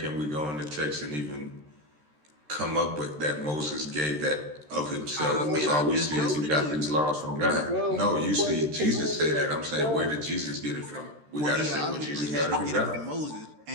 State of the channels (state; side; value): late; left; 13 ms